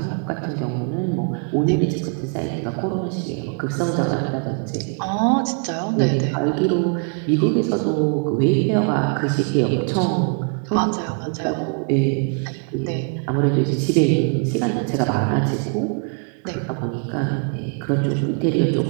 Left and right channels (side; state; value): left; quieter; 39.6 dB